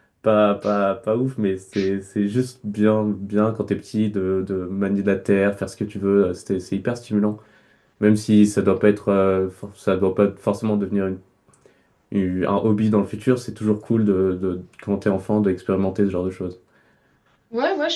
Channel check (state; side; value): identical; both; correlation 1.00